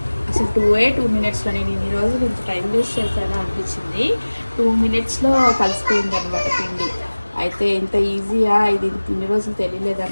అసలు 2 మినిట్స్లో నేను ఇన్ని రోజులు ఇంత టైం వేస్ట్ చేశాను అనిపించింది. 2 మినిట్స్లో కలిసిపోయింది అనమాట పిండి. అయితే ఇంత ఈజీయా, ఇది ఇన్ని రోజులు తెలియలేదా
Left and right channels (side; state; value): both; inverted; correlation -1.00